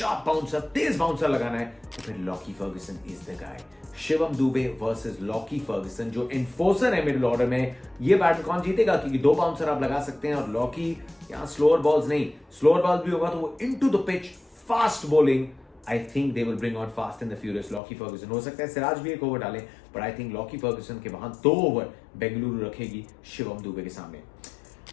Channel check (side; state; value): right; drops out; at 17.8 s